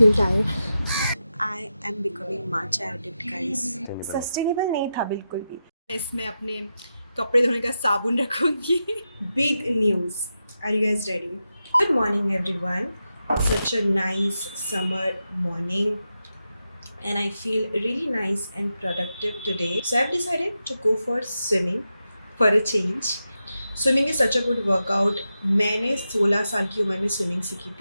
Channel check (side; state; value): both; inverted; correlation -0.89